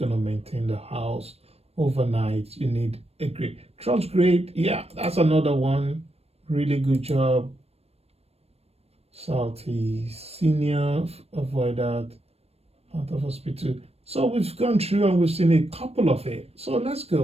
maintain the house overnight. You need a grade. Trust grade, yeah, that's another one. Really good job. Salty, senior, avoid that, out of hospital. So we've gone through and we've seen a couple of it. So let's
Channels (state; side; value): late; left; 0.29 ms